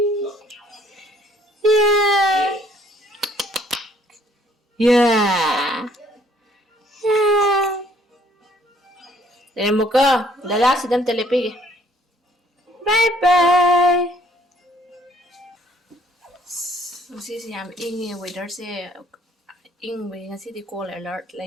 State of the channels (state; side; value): normal; both; correlation 0.62